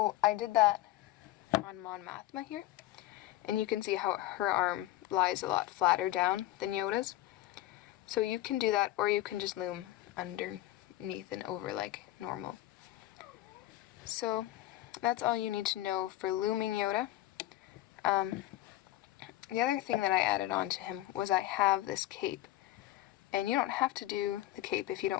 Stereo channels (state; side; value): quieter; right; 15.3 dB